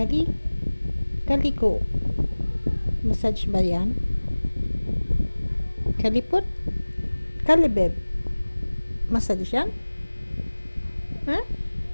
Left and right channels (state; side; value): inverted; both; correlation -1.00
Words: Kaliko. Massage ba yan? Kalipot? Kalibeb. Massage yan? Ha?